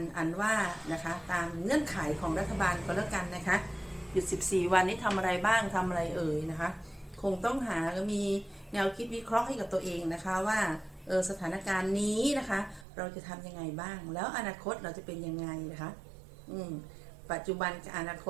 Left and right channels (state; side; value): drops out; left; at 12.9 s